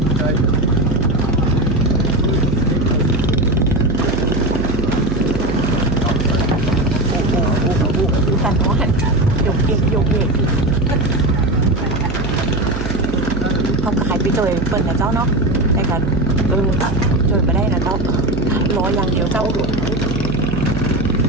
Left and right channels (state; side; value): noise; right; hum, 5 dB below the sound